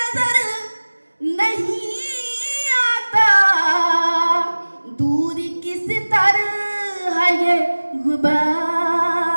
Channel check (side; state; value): both; inverted; correlation -1.00